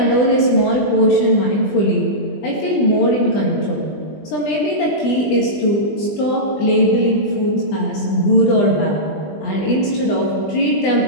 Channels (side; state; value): right; late; 20 ms